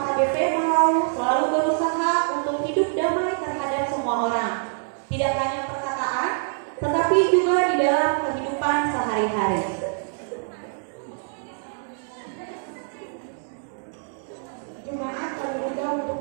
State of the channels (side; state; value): left; silent; digital silence